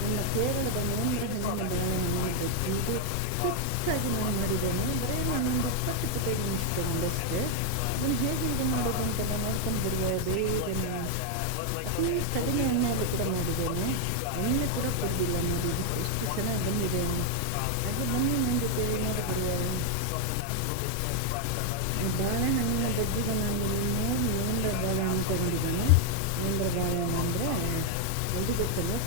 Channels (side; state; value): both; different; correlation 0.00